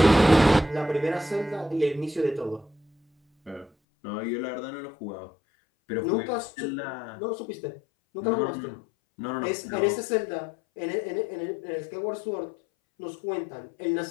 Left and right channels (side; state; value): right; drops out; at 3.7 s